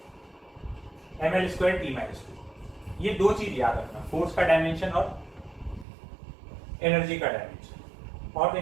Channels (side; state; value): left; drops out; at 5.9 s